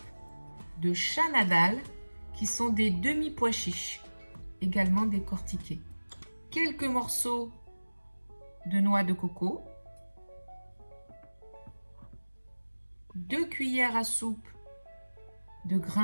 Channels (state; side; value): inverted; both; correlation -1.00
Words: de chana dal, qui sont des demi-pois chiches, également décortiqués. Quelques morceaux de noix de coco. 2 cuillères à soupe de